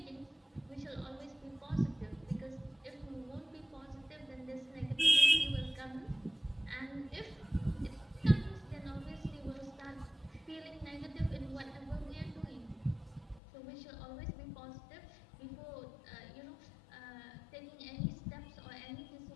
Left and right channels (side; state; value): right; drops out; at 13.4 s